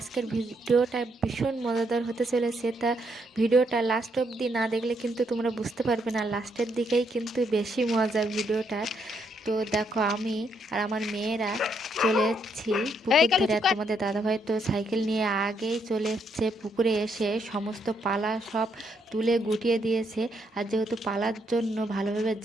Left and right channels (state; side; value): normal; both; correlation 0.75